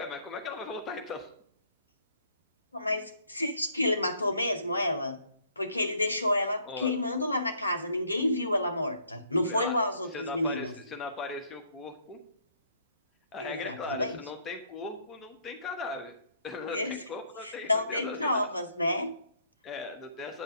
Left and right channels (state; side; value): inverted; both; correlation -0.66